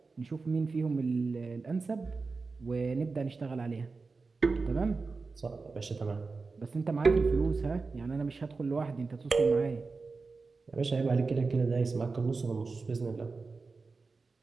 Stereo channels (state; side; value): quieter; left; 4.2 dB